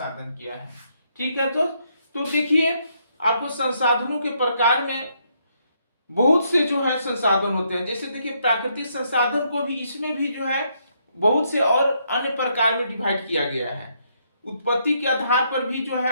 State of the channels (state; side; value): inverted; both; correlation -0.74